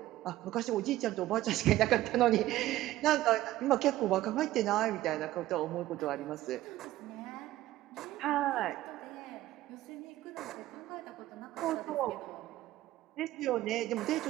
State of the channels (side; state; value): left; quieter; 15.3 dB